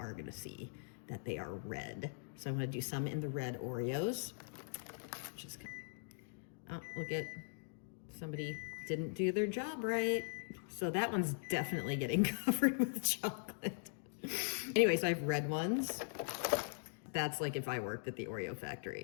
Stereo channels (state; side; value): silent; right; digital silence